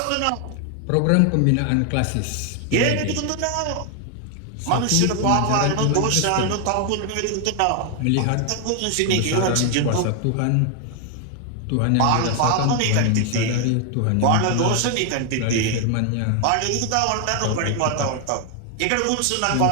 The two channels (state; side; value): different; both; correlation 0.01